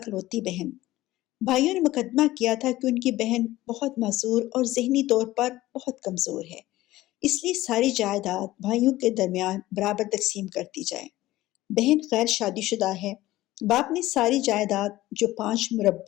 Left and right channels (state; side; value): quieter; right; 16.6 dB